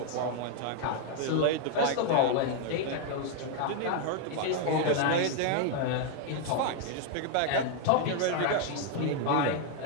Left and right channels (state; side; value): different; both; correlation 0.00